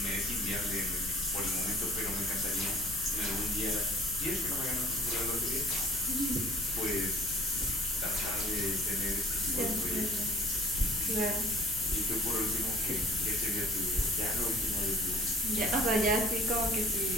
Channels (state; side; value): noise; left; rumble, 12 dB below the sound